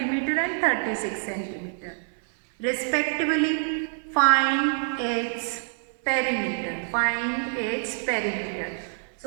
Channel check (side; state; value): left; silent; 58 dB below the other